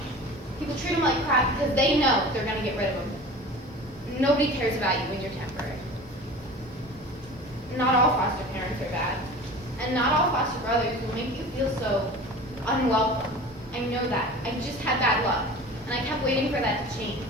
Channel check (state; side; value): normal; both; correlation 0.38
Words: People treat them like crap because they know they're going to get rid of them. Nobody cares about you when you're temporary. Not all foster parents are bad. And not all foster brothers will make you feel so unwelcome. I know that. I just had bad luck. And I kept waiting for that to change.